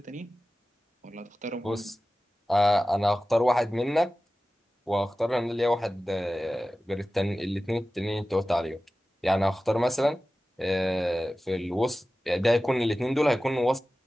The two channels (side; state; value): both; normal; correlation 0.96